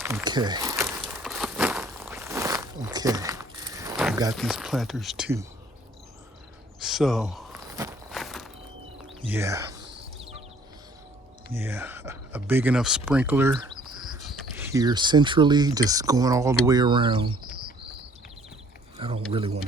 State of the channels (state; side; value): normal; both; correlation 0.58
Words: Okay. I've got these planters too. So, yeah, a big enough sprinkler here centrally, just going all the way around. I don't really want